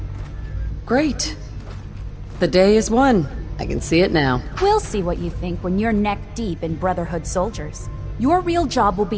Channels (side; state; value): both; identical; correlation 1.00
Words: great. The day is won. I can see it now. We'll see what you think when you're neck deep in Brotherhood soldiers. Your real job will